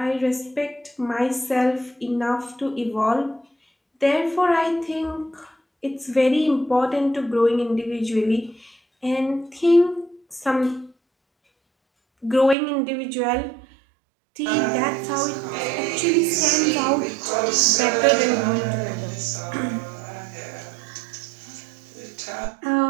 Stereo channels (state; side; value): drops out; left; at 12.6 s